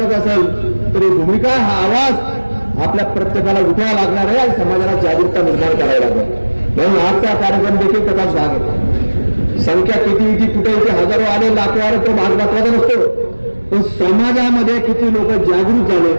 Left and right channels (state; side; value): inverted; both; correlation -1.00